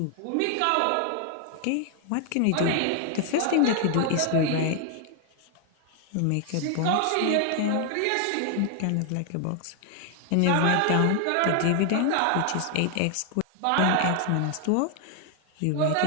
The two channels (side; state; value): both; different; correlation 0.00